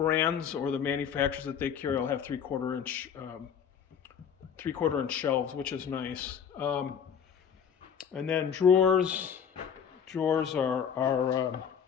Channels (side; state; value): right; quieter; 7.7 dB